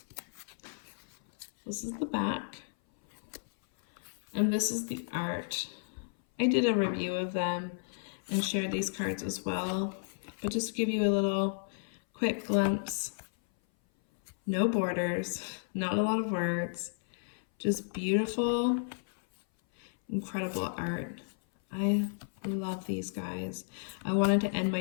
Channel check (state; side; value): silent; right; 56 dB below the other